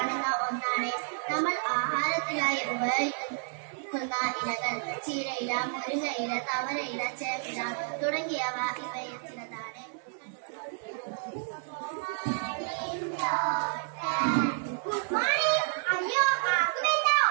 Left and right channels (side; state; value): left; silent; 58 dB below the other